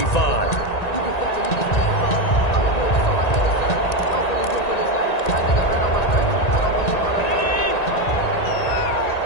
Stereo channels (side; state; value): right; late; 1.9 ms